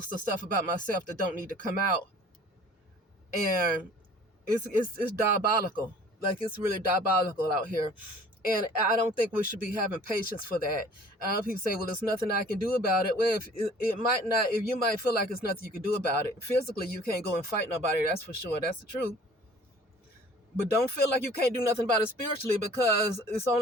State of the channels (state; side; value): normal; both; correlation 0.50